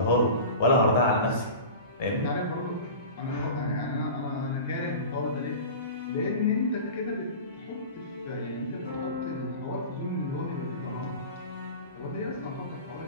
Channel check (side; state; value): both; inverted; correlation -0.34